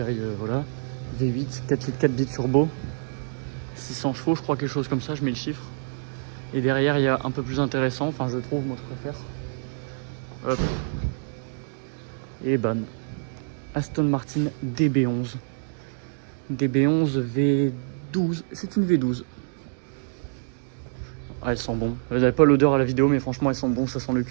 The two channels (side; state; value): left; silent; digital silence